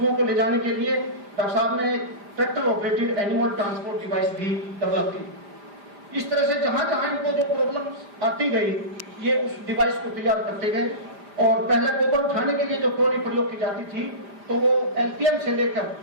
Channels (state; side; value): late; left; 5.0 ms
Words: को ले जाने के लिए डॉक्टर साहब ने एक tractor operated animal transport device भी डेवलप की। इस तरह से जहां जहां इनको जो प्रॉब्लम आती गई, ये उस डिवाइस को तैयार करते गए। और पहले गोबर उठाने के लिए जो ट्रॉली प्रयोग की जाती थी, तो वो एलपीएम से लेकर